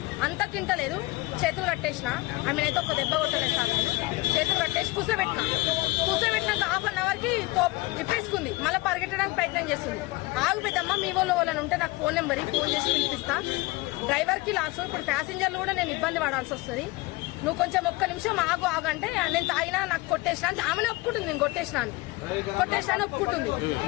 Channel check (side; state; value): right; quieter; 22.2 dB